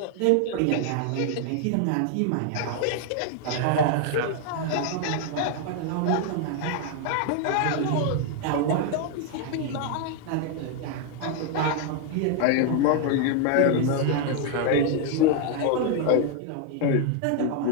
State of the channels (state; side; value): different; both; correlation 0.00